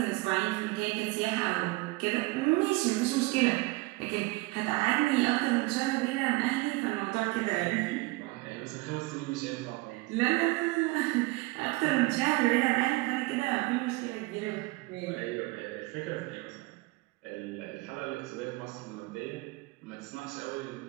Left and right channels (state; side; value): quieter; left; 22.9 dB